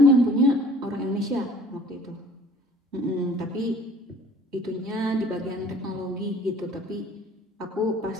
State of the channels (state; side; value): normal; both; correlation 0.52